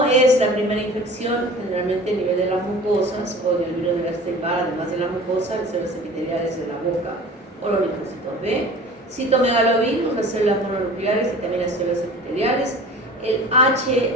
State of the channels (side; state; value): both; normal; correlation 0.42